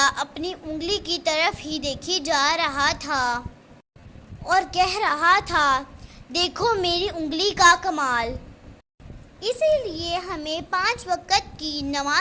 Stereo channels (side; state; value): both; identical; correlation 1.00